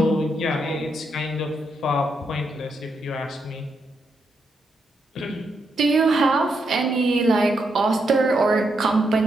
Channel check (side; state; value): both; normal; correlation 0.81